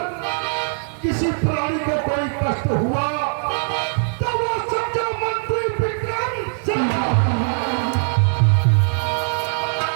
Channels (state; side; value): silent; left; 59 dB below the other